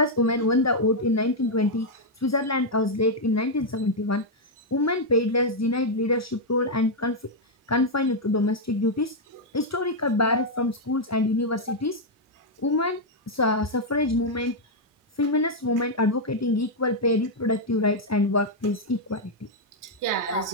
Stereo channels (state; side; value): normal; both; correlation -0.02